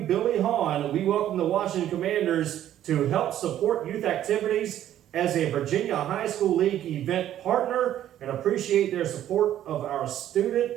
Billy Hahn. We welcome the Washington Commanders to help support youth activities as a Virginia High School League event partner and appreciate their support of our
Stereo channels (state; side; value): quieter; left; 11.7 dB